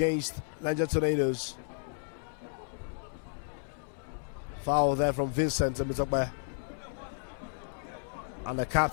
Nigerian Tornadoes. Foul there from Vincent Temitokbe. And the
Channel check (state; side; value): silent; right; digital silence